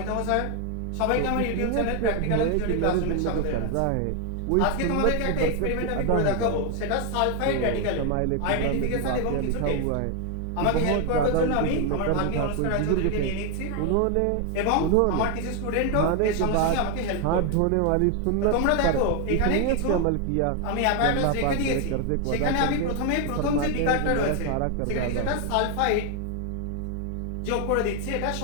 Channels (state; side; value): different; both; correlation 0.01